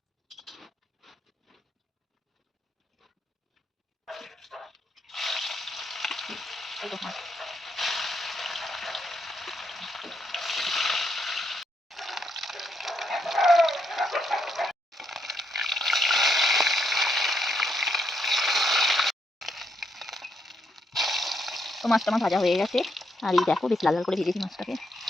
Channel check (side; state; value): both; normal; correlation 0.77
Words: মাছটা আমার ভাজা হয়ে গেছে। আর এই দেখো বেশ লাল লাল করে ভেজেছি মাছটাকে।